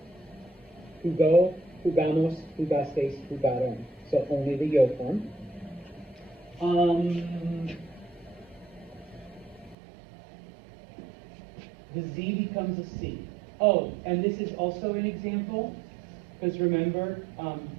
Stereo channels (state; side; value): drops out; left; at 9.8 s